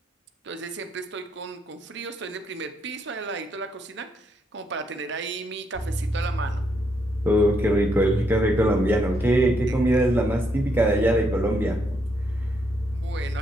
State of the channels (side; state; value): both; normal; correlation 0.76